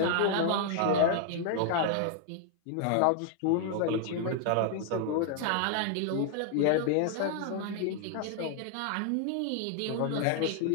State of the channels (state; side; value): different; both; correlation 0.00